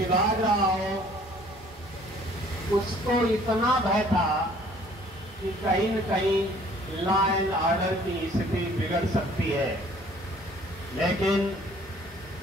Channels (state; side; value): normal; both; correlation 0.56